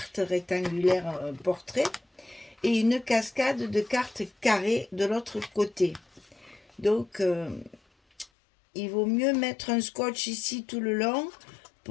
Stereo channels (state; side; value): drops out; right; at 8.2 s